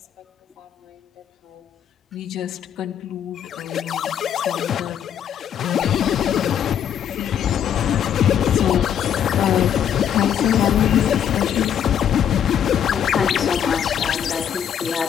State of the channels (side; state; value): right; quieter; 9.1 dB